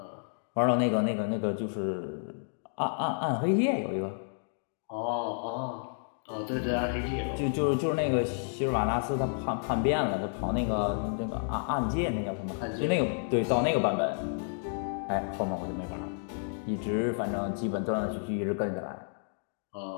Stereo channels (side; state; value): right; silent; digital silence